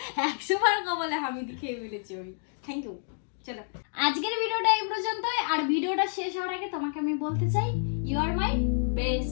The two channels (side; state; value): right; silent; digital silence